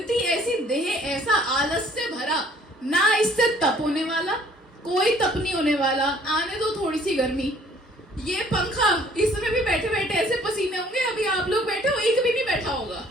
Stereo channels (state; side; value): normal; both; correlation 0.58